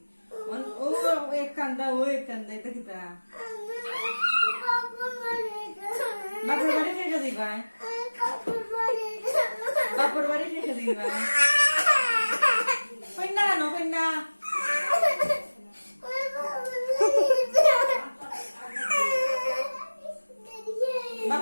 ও এক কান্দা ও এক কান্দা এটা গীতা বাপুর বাড়ি শেষে দিবা বাপুর বাড়ি শেষে দিবা কন্যা কেন কন্যা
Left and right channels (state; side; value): inverted; both; correlation -1.00